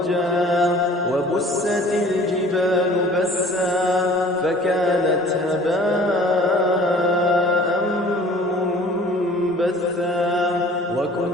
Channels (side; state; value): both; normal; correlation 0.49